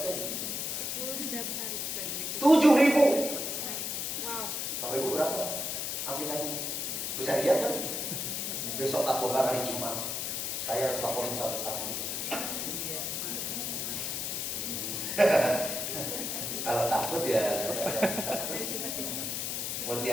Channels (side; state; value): left; noise; hiss, 2 dB below the sound